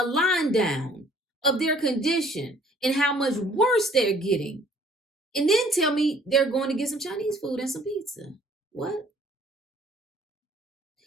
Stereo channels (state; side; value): normal; both; correlation 0.57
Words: line down of their condition and how much worse they're getting, and then tell me they're going to get some Chinese food and some pizza. What?